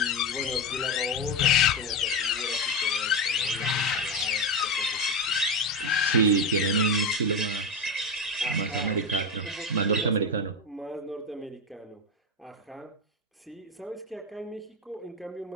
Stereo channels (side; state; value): both; normal; correlation 0.13